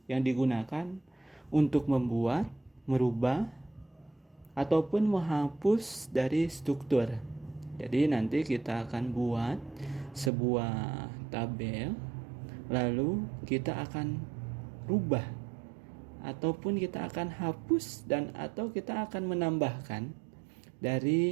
yang digunakan untuk membuat, merubah, ataupun menghapus dari struktur. Jadi nanti kita akan buat sebuah tabel, lalu kita akan rubah ataupun kita akan hapus dan atau kita akan menambahkan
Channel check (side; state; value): left; drops out; at 10.3 s